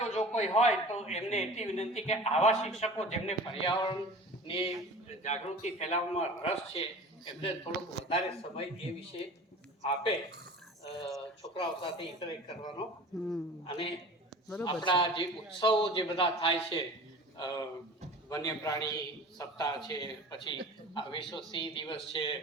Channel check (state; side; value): normal; both; correlation 0.39